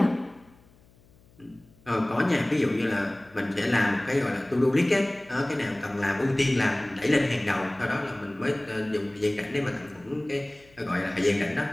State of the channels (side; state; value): left; noise; hum, 29 dB below the sound